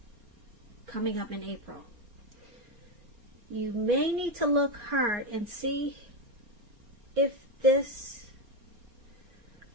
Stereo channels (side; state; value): left; late; 4.3 ms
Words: coming up in April. You may need to look hard and see if this,